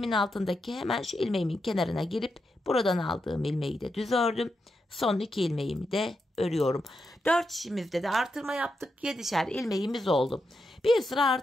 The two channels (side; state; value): both; normal; correlation 0.85